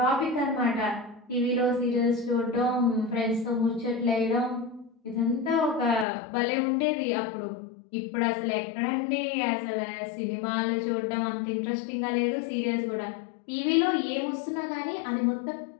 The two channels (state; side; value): drops out; right; at 6.1 s